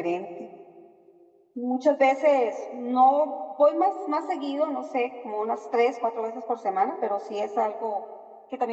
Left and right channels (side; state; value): both; identical; correlation 1.00